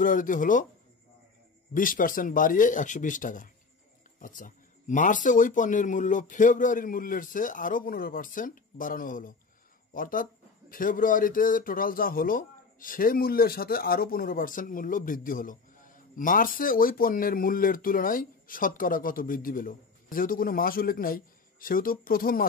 হলো 20% বাড়িয়ে 120 টাকা। আচ্ছা, মার্চে ওই পণ্যের মূল্য ফেব্রুয়ারির মূল্যের চেয়ে আরও 15% বাড়ানো হলো। অর্থাৎ ফেব্রুয়ারিতে টোটাল যা হলো সেই মূল্যের সাথে আরও 15% মূল্য বৃদ্ধি হলো। মার্চে ওই পণ্যের মূল্যের তুলনায় শতকরা কত বৃদ্ধি পেল? যেহেতু কোনো মাস উল্লেখ নাই, সেহেতু প্রথম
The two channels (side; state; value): right; quieter; 4.5 dB